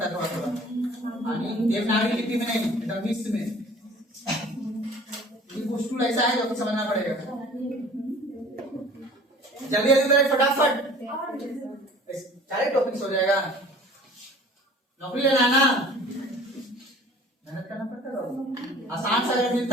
है थोड़ा थोड़ा, देवनागरी लिपि में नहीं, एकदम मिक्स में। ये कुछ टूल ऐसा है जो आपको समझना पड़ेगा। जल्दी जल्दी करें फटाफट, सारे टॉपिक्स हो जाएगा। नौकरी लेना है ना, मेहनत करना पड़ता है। आसान से अगर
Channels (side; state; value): both; normal; correlation 0.47